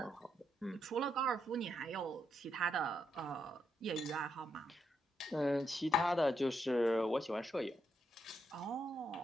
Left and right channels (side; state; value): both; normal; correlation 0.80